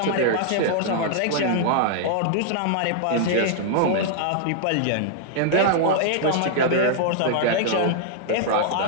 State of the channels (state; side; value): different; both; correlation -0.01